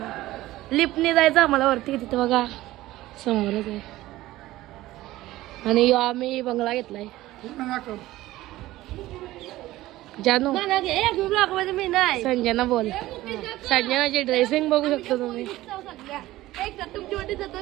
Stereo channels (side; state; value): left; quieter; 16.6 dB